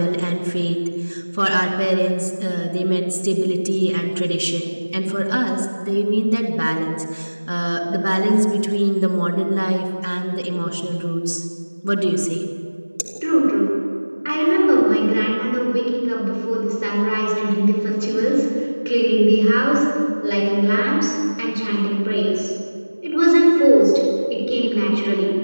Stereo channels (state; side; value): inverted; both; correlation -1.00